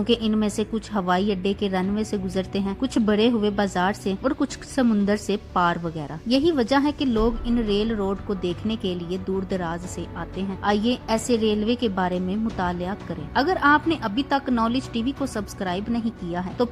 इनमें से कुछ हवाई अड्डे के रनवे से गुजरते हैं, कुछ बड़े हुए बाजार से और कुछ समुन्दर से पार वगैरह। यही वजह है कि लोग इन रेल रोड को देखने के लिए दूर दराज से आते हैं। आइए ऐसे रेलवे के बारे में मुतालिया करें। अगर आपने अभी तक नॉलेज टीवी को सब्सक्राइब नहीं किया है तो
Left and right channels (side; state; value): both; identical; correlation 1.00